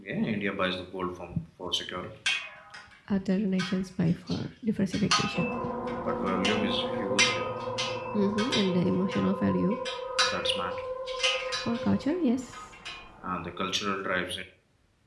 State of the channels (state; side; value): identical; both; correlation 1.00